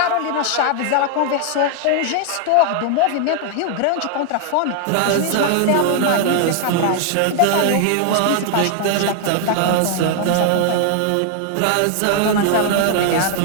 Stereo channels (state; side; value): different; both; correlation 0.00